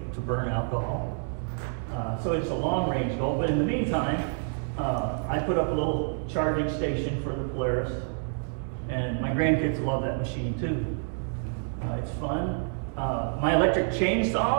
to burn alcohol. So it's a long-range goal, but in the meantime, I put up a little charging station for the Polaris, and my grandkids love that machine too. It's fun. My electric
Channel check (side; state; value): left; silent; digital silence